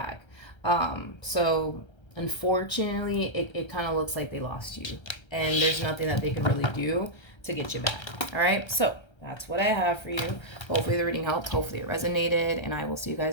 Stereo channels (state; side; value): late; right; 1.3 ms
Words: So unfortunately, it kind of looks like they lost you, and there's nothing that they can really do to get you back. All right, so that's what I have for you. Hopefully the reading helped. Hopefully it resonated, and I will see you